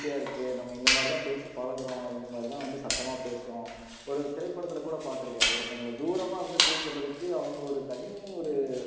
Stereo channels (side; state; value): both; identical; correlation 1.00